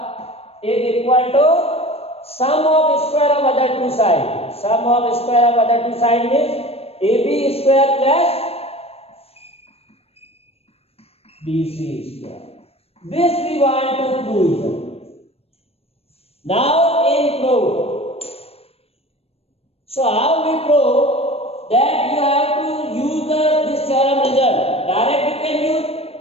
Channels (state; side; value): late; right; 0.29 ms